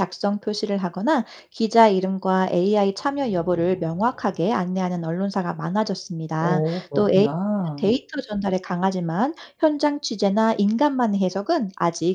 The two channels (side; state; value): both; identical; correlation 1.00